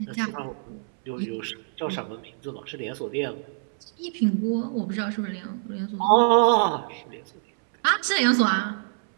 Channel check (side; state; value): left; silent; 61 dB below the other